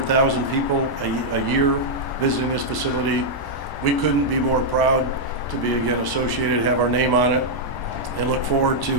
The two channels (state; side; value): late; right; 1.1 ms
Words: people a year visiting this facility. We couldn't be more proud to be again associated, have our name on it, and look forward